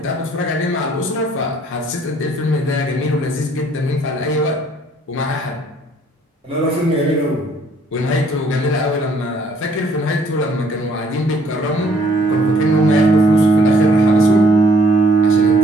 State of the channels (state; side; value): normal; both; correlation 0.61